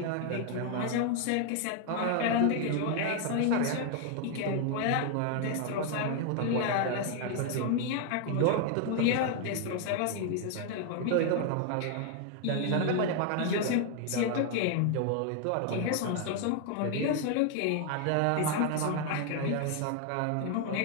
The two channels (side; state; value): both; different; correlation 0.00